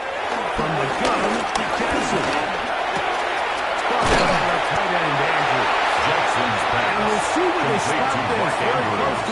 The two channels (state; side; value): identical; both; correlation 1.00